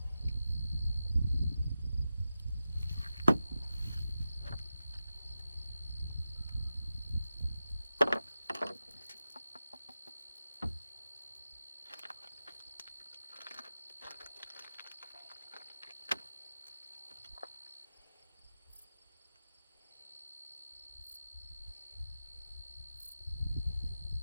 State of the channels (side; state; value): both; inverted; correlation -0.92